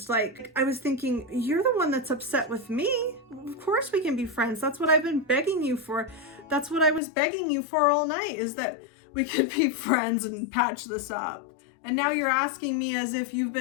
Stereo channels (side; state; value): right; drops out; at 7.0 s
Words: Like, I was thinking, you're the one that's upset with me. Of course we can be friends. That's what I've been begging you for. That's what I was begging you for all night, is that we could be friends and patch this up. And now you're asking me as if you've